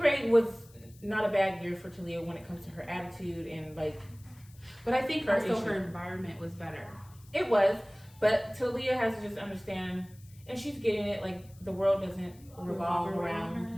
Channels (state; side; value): noise; left; hiss, 26 dB below the sound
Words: was not a bad year for Talia when it comes to her attitude and like But I think Her also issue. her environment was better. it was. But Talia has to just understand, and she's getting it. Like the world doesn't revolve around